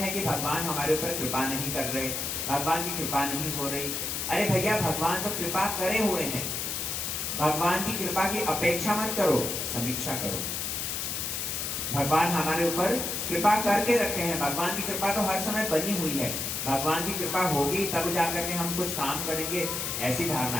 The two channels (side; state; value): left; noise; hiss, 2 dB below the sound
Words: कि भगवान हमारे ऊपर कृपा नहीं कर रहे, भगवान की कृपा नहीं हो रही। अरे भैया, भगवान तो कृपा करे हुए हैं। भगवान की कृपा की अपेक्षा मत करो, समीक्षा करो। भगवान हमारे ऊपर कृपा करके रखे हैं। भगवान की कृपा तो हर समय बनी हुई है। भगवान की कृपा होगी तब जाकर के हम कुछ काम करेंगे, ऐसी